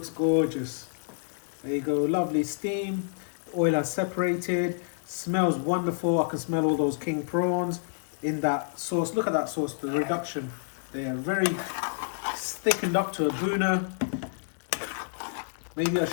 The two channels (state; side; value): silent; right; digital silence